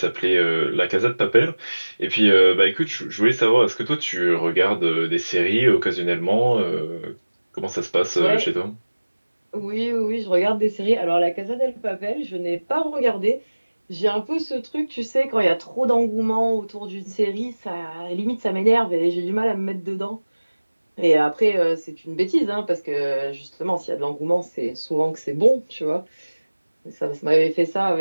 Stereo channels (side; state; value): both; inverted; correlation -1.00